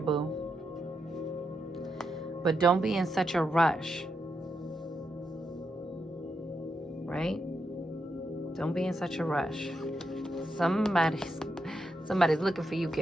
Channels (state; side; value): normal; both; correlation 0.83